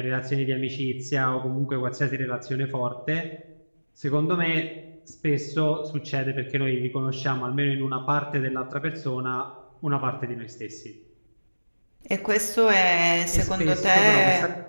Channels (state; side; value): inverted; both; correlation -1.00